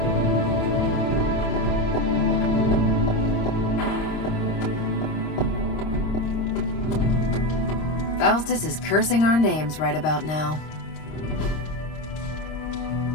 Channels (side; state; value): right; late; 26 ms